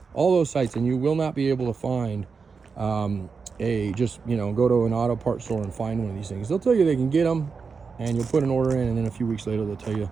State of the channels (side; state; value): left; quieter; 5.1 dB